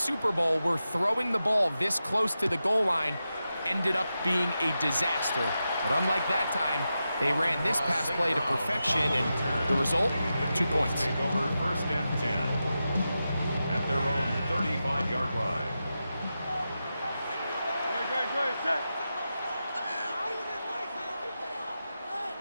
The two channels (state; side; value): inverted; both; correlation -0.90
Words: Bowl where throwing the ball this close to the goal line ended up being a disaster. But unlike that time, they ran this pass play to perfection, and the result, 2 points. Take over first and 10 at their own 35-yard line. Great, set.